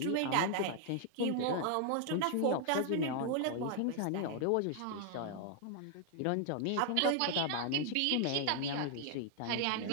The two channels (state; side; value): different; both; correlation 0.00